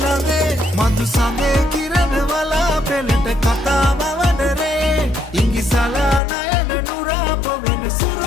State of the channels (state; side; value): drops out; right; at 6.2 s